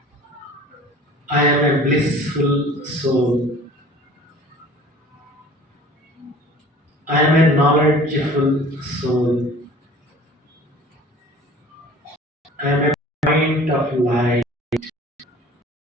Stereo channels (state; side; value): normal; both; correlation 0.46